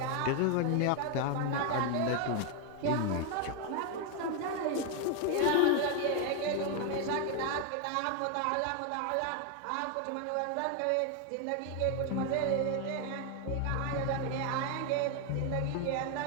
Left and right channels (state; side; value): different; both; correlation 0.01